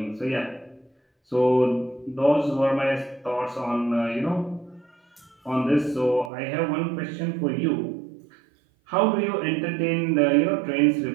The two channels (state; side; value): drops out; left; at 6.3 s